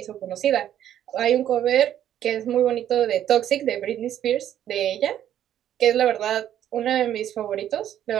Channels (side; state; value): left; quieter; 11.0 dB